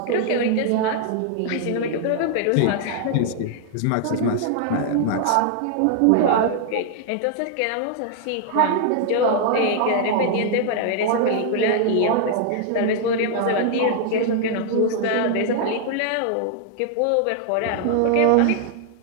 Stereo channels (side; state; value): both; different; correlation -0.01